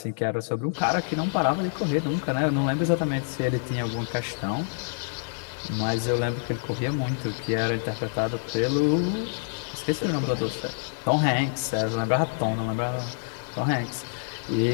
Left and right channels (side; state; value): right; silent; digital silence